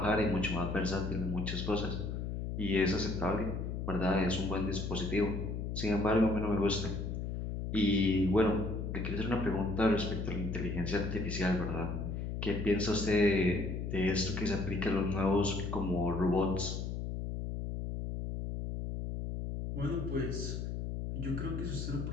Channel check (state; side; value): noise; left; hum, 3 dB below the sound